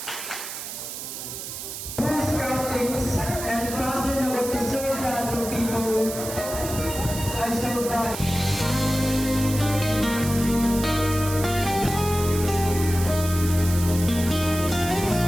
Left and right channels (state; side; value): noise; right; hiss, 8 dB below the sound